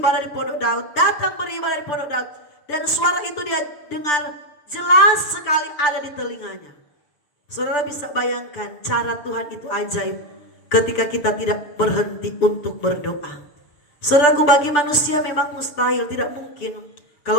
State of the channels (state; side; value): late; right; 6.8 ms